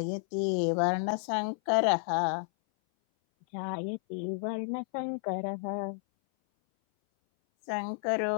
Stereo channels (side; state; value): right; silent; 57 dB below the other